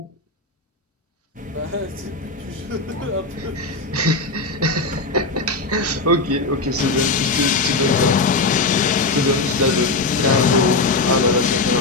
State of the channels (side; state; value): right; quieter; 3.5 dB